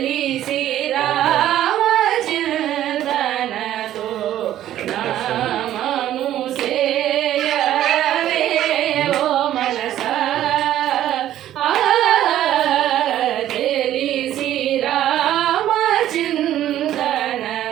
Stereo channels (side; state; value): left; quieter; 12.4 dB